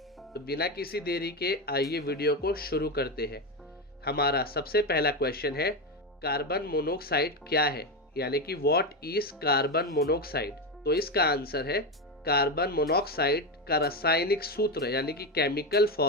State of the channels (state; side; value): normal; both; correlation 0.13